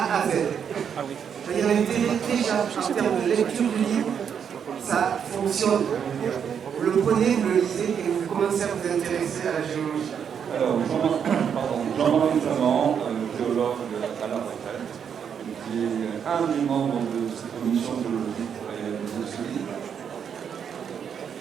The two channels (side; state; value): left; quieter; 7.7 dB